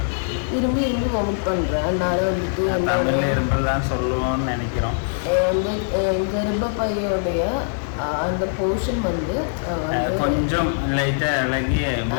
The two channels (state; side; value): silent; right; digital silence